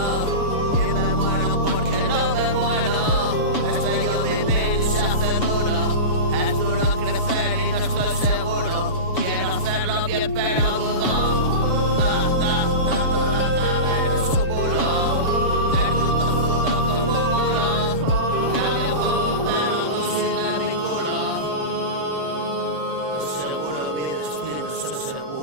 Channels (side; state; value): right; late; 7.1 ms